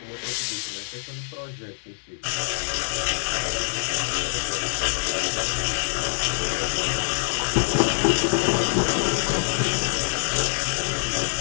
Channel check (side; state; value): right; silent; digital silence